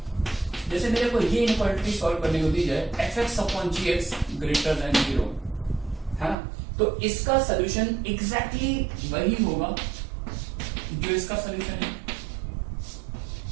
जैसे मेरे को ये इनक्वालिटी सॉल्व करने को दी जाए f(x)(gx) ग्रेटर देन 0 है ना, तो इसका सोल्यूशन एग्जैक्टली वही होगा जो इसका सोल्यूशन है,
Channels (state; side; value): drops out; left; at 6.4 s